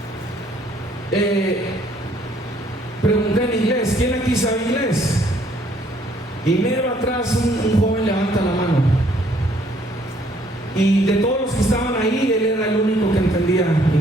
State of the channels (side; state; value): both; normal; correlation 0.64